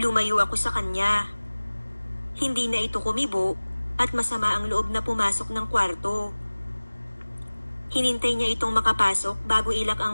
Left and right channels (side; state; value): both; inverted; correlation -1.00